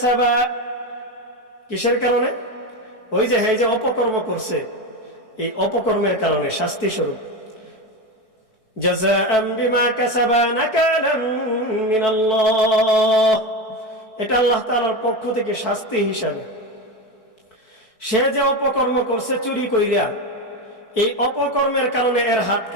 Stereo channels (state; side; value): late; right; 4.6 ms